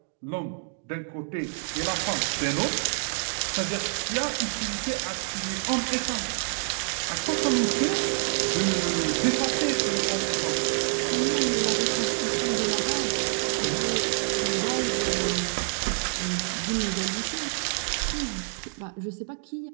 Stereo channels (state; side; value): silent; left; digital silence